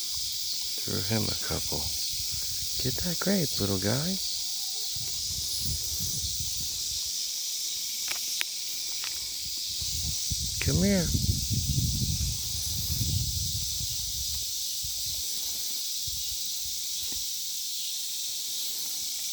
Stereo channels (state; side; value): identical; both; correlation 1.00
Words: Threw him a couple. Get that grape, little guy. Come here.